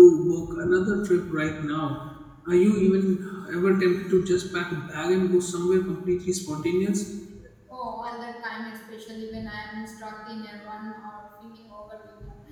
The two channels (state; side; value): identical; both; correlation 1.00